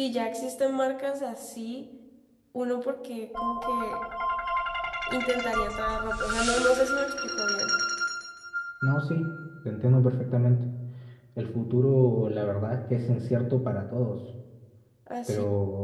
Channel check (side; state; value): both; identical; correlation 1.00